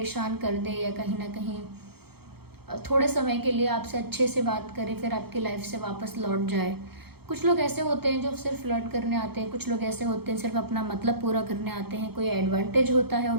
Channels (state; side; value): late; left; 0.96 ms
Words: कर दे या कहीं ना कहीं थोड़े समय के लिए आपसे अच्छे से बात करे फिर आपकी लाइफ से वापस लौट जाए। कुछ लोग ऐसे होते हैं जो सिर्फ फ्लर्ट करने आते हैं, कुछ लोग ऐसे होते हैं सिर्फ अपना मतलब पूरा करने आते हैं, कोई एडवांटेज होता है